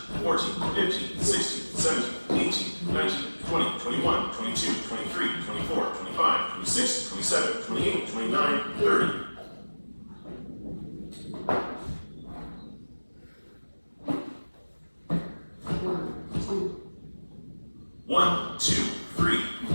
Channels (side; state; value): both; inverted; correlation -1.00